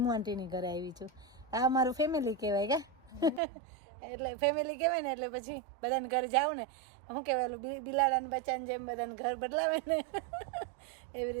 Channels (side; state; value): left; drops out; at 3.4 s